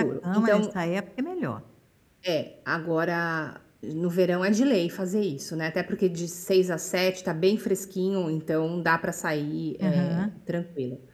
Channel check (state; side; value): identical; both; correlation 1.00